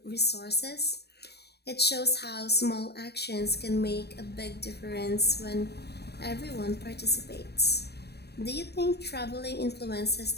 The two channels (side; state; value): right; late; 0.48 ms